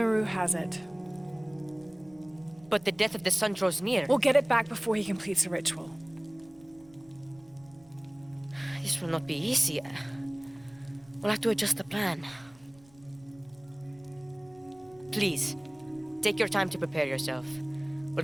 has it. But the death of the sun draws near. We'll get it back before he completes the ritual. This will not be easy. We'll have to adjust the plan. Please, take your time to prepare yourself.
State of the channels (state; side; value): noise; right; rumble, 28 dB below the sound